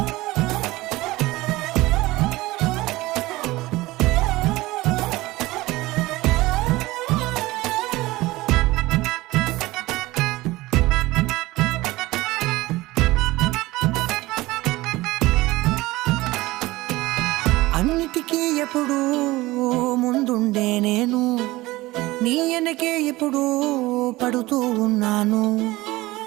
అన్నిటికీ ఎప్పుడూ ముందుండే నేను, నీ వెనకే ఎప్పుడూ పడుతూ ఉన్నాను.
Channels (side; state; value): left; quieter; 19.4 dB